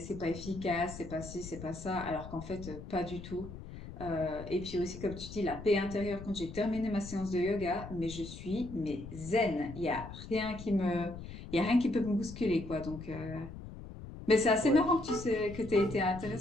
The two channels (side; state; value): left; noise; rumble, 12 dB below the sound